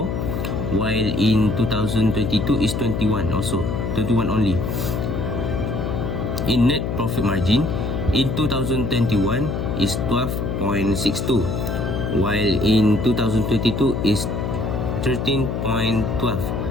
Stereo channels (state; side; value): noise; left; hum, 2 dB below the sound